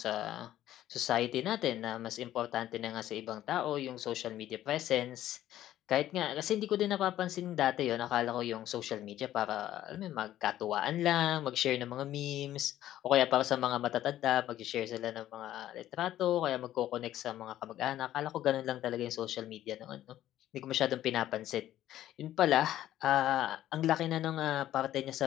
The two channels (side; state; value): right; quieter; 12.9 dB